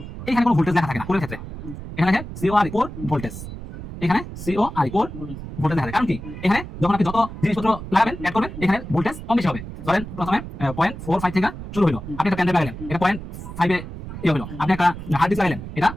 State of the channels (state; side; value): noise; right; rumble, 10 dB below the sound